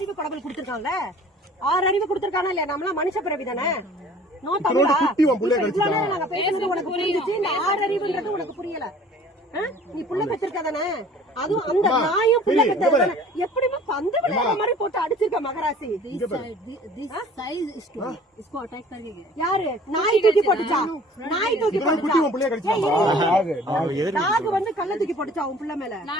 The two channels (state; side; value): normal; both; correlation 0.49